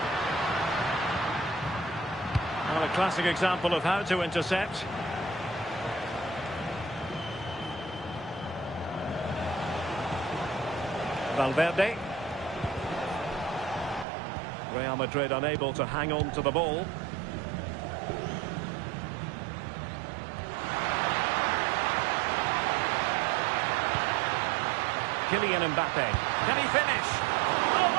Well, a classic example of how to intercept. Valverde. Real Madrid unable to hang on to the ball. Kylian Mbappe. Can he finish? Oh,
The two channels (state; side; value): drops out; left; at 14.1 s